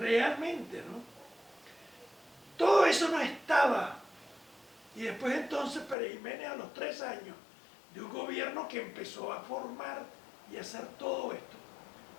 no? Todo eso no estaba. Y después entonces Pérez Jiménez, a los 3 años de un gobierno que empezó a formar y a hacer todo esto,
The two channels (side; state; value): right; drops out; at 6.0 s